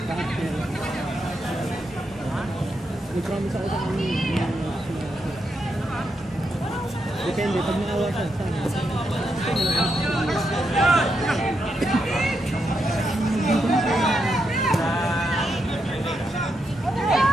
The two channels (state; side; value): normal; both; correlation 0.83